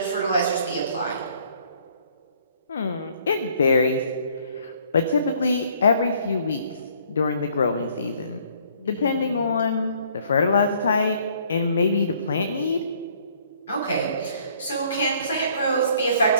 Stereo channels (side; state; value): both; inverted; correlation -0.62